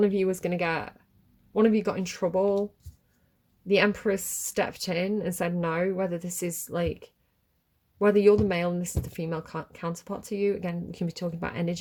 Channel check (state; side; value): identical; both; correlation 1.00